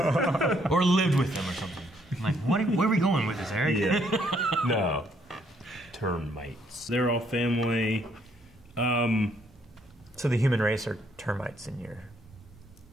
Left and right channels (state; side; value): normal; both; correlation 0.69